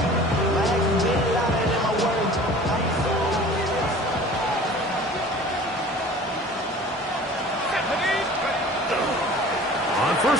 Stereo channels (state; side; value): normal; both; correlation 0.44